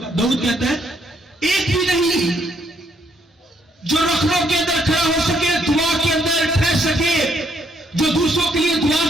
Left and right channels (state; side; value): normal; both; correlation 0.71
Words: कहता है एक भी नहीं जो रखड़ों के अंदर खड़ा हो सके, दुआ के अंदर ठहर सके, जो दूसरों के लिए दुआ